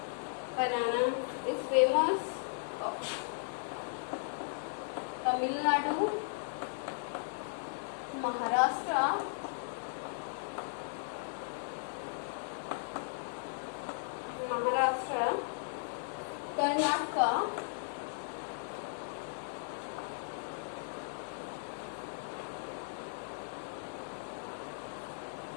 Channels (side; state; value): right; silent; digital silence